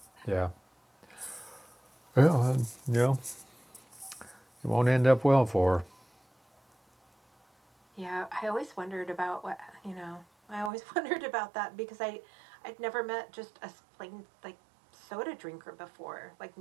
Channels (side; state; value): left; drops out; at 10.7 s